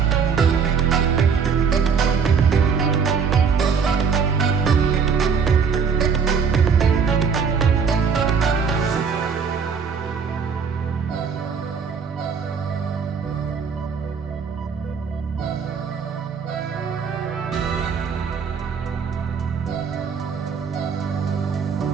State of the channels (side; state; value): left; quieter; 6.1 dB